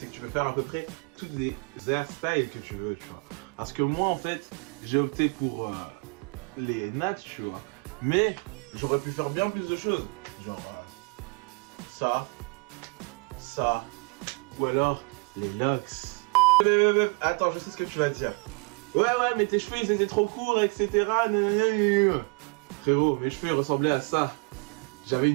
que tu peux faire à peu près toutes les hairstyles que tu veux, tu vois. Parce que moi, en fait, j'ai opté pour les nattes, tu vois. Mais j'aurais pu faire bien plus de choses. Genre, ça, ou alors les locks. Attends, je sais ce que tu vas dire. Ouais, mais tes cheveux ils étaient trop courts, etc. Frérot, mes cheveux ils ressemblaient à ça. J'avais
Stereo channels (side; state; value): left; quieter; 32.7 dB